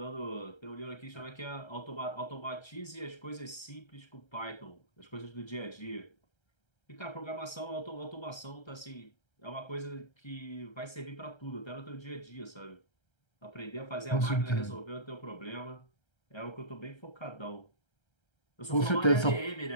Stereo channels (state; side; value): late; right; 1.3 ms